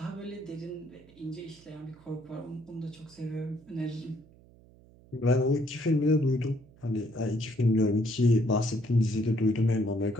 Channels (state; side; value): noise; right; hum, 25 dB below the sound